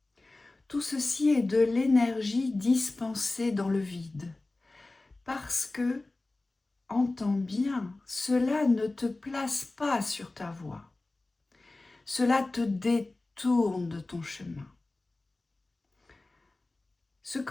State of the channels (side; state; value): right; quieter; 3.1 dB